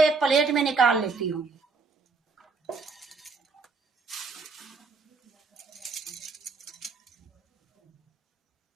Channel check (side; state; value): left; quieter; 4.3 dB